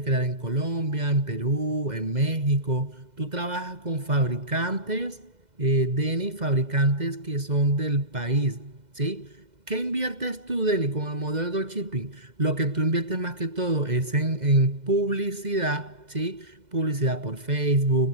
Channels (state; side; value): late; left; 2.0 ms